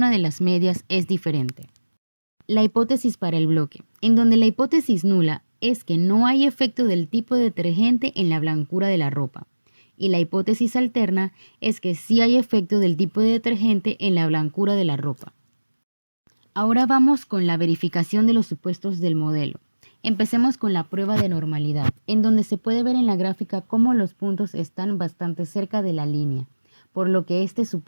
de las medias es diferente. La hipótesis para el bloque, en donde la hipótesis nula es que no hay efecto del tipo de detergente en la blancura de la ropa. Y la hipótesis alterna es que sí hay efecto del tipo de detergente en la blancura de la ropa. Ahora vamos con la verificación de los supuestos del modelo. Empecemos con la prueba de normalidad, en donde se puede ver en la gráfica cómo los puntos están bastante cerca de la línea, por lo que este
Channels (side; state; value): both; inverted; correlation -1.00